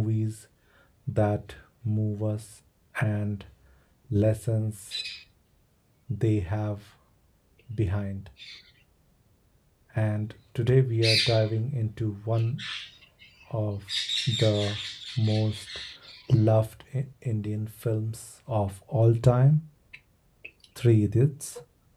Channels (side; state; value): both; identical; correlation 1.00